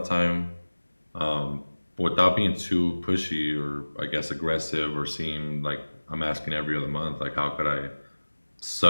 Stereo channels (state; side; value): inverted; both; correlation -1.00